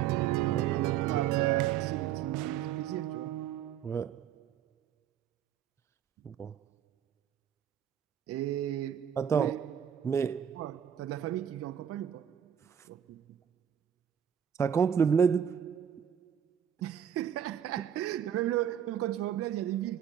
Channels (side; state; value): left; quieter; 9.1 dB